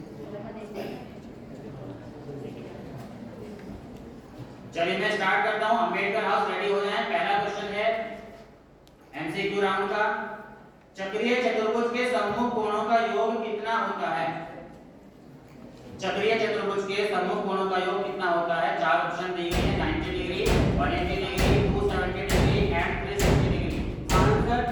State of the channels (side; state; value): both; identical; correlation 1.00